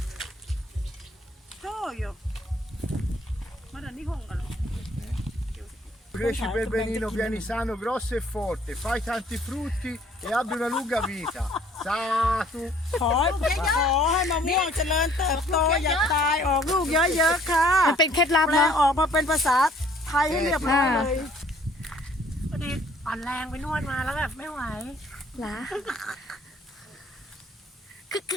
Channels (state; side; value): normal; both; correlation 0.58